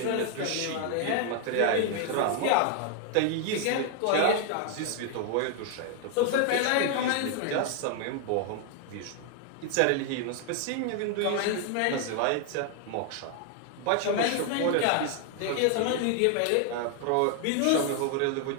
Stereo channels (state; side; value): different; both; correlation 0.00